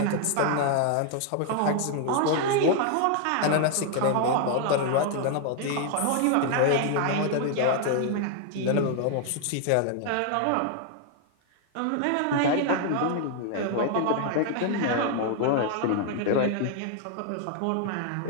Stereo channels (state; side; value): different; both; correlation 0.00